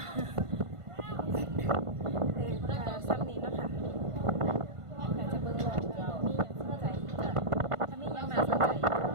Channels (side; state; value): left; late; 1.5 ms